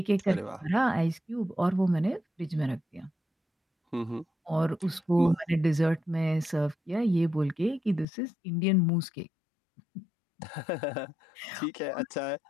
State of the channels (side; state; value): right; drops out; at 8.1 s